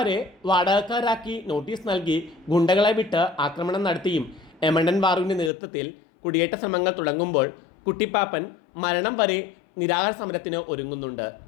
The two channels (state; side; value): drops out; right; at 5.5 s